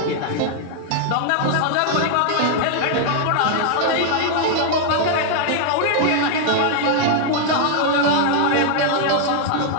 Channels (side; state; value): both; different; correlation 0.00